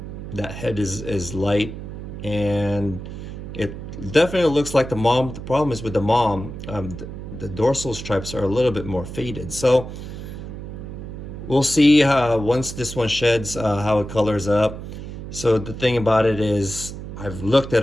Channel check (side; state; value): right; noise; hum, 9 dB below the sound